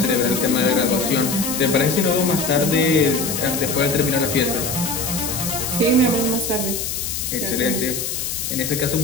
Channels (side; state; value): left; noise; hiss, 3 dB below the sound